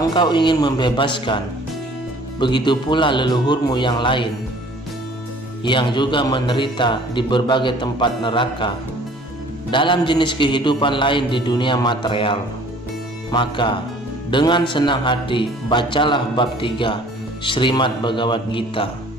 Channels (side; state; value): both; normal; correlation 0.52